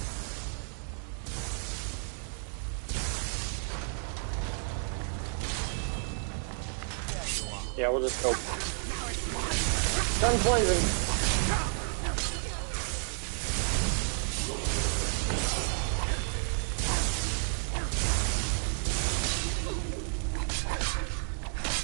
Yeah, we'll just go. Guns blazing.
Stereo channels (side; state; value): left; silent; 57 dB below the other